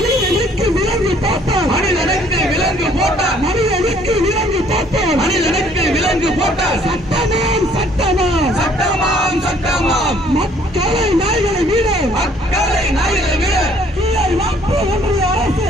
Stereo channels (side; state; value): both; normal; correlation 0.60